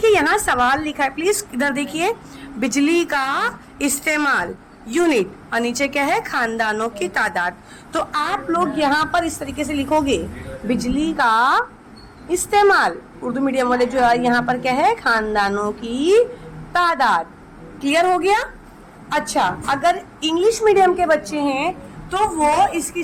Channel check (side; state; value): both; identical; correlation 1.00